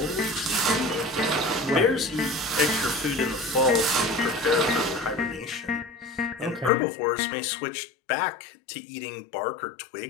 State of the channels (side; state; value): right; drops out; at 6.7 s